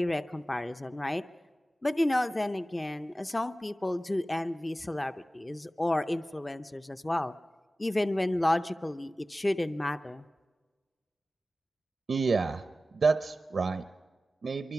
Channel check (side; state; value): both; normal; correlation 0.95